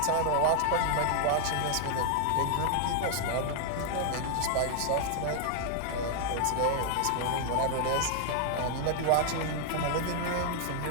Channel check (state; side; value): different; both; correlation 0.00